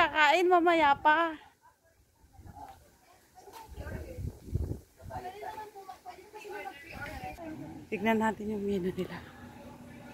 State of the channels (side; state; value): both; identical; correlation 1.00